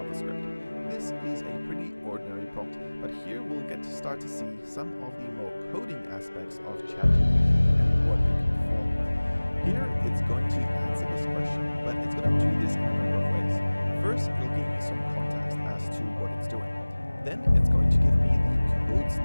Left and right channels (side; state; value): both; inverted; correlation -1.00